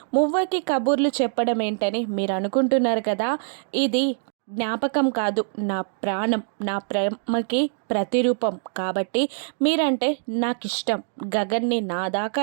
మువ్వకి కబుర్లు చెప్పడం ఏంటని మీరు అనుకుంటున్నారు కదా, ఇది జ్ఞాపకం కాదు, నా ప్రాణం, నా ప్రేమకి ప్రతిరూపం కాబట్టి మీరంటే నాకు ఇష్టం, గగన్ని నా దాకా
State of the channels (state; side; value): silent; left; digital silence